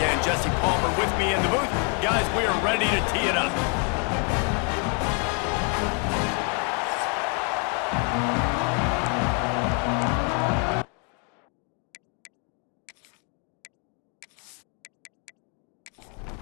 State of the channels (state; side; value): quieter; right; 38.2 dB